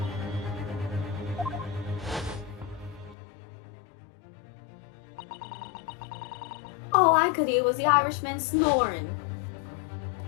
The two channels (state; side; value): drops out; right; at 3.2 s